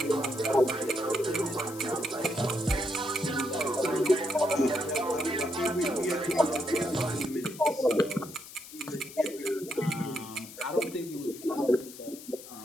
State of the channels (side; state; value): left; noise; hiss, 15 dB below the sound